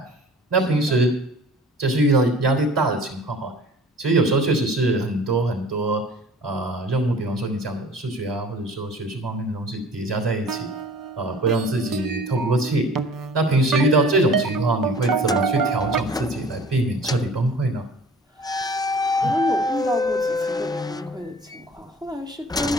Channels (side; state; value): both; normal; correlation 0.47